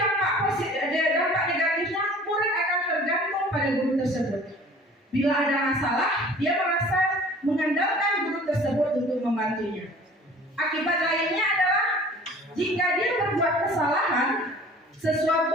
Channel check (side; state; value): both; normal; correlation 0.48